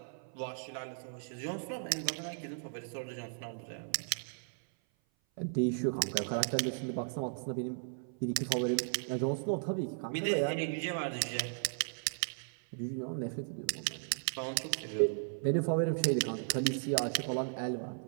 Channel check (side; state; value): left; silent; 54 dB below the other